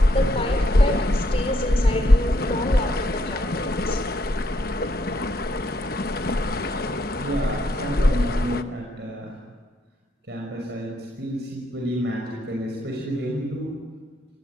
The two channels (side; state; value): both; normal; correlation 0.75